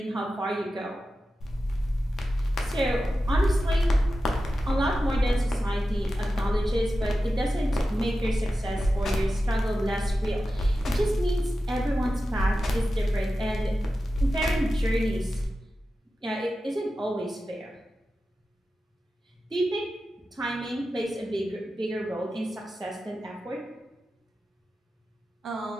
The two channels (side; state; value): both; normal; correlation 0.93